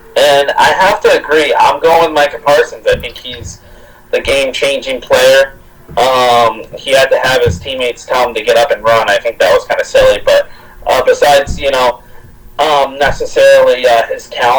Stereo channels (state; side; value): identical; both; correlation 1.00